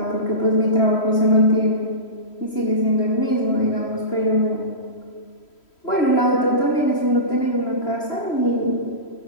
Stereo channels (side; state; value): right; late; 3.1 ms